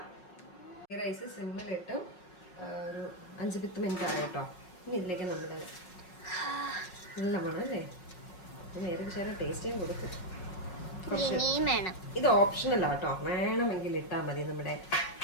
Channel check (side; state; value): right; late; 5.5 ms